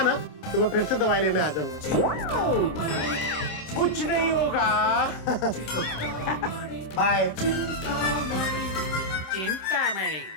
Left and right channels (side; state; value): right; late; 27 ms